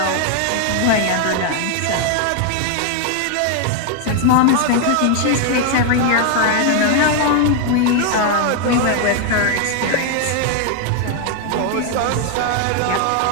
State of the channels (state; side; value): different; both; correlation 0.00